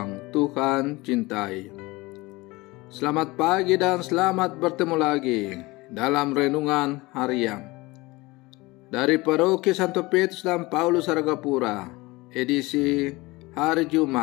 Tuhan cintai, selamat pagi dan selamat bertemu lagi dalam renungan harian dari Paroki Santo Petrus dan Paulus Argapura, edisi hari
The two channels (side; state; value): right; quieter; 22.1 dB